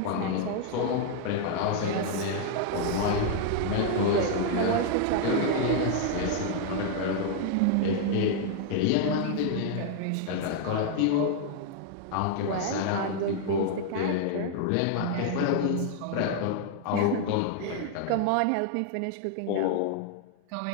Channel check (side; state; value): both; different; correlation 0.00